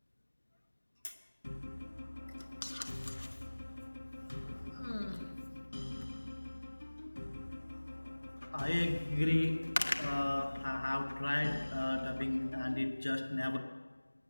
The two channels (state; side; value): inverted; both; correlation -1.00